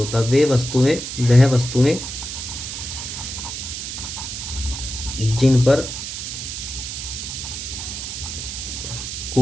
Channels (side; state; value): right; noise; hiss, 6 dB below the sound